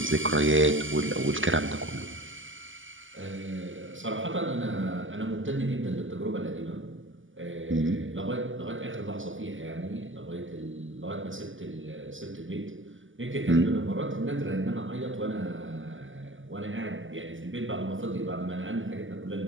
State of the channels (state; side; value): late; left; 0.57 ms